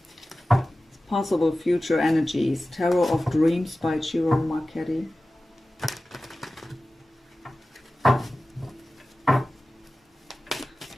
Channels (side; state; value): both; normal; correlation 0.96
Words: Possible future energies. Tarot of Dreams by Chiro Marchetti.